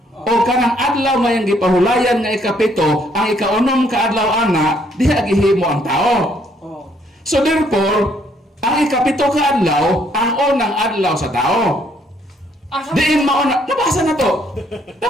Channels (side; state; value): both; normal; correlation 0.68